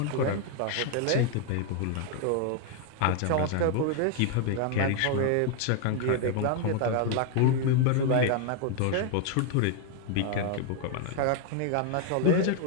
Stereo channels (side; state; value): both; different; correlation 0.00